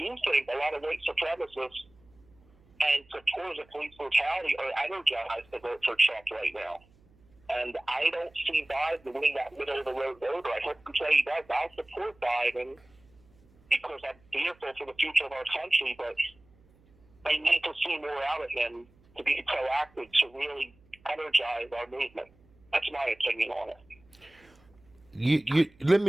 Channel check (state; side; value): noise; right; hum, 30 dB below the sound